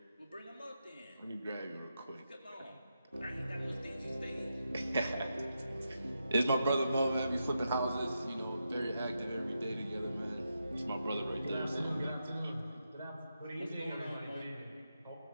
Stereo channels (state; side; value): inverted; both; correlation -0.86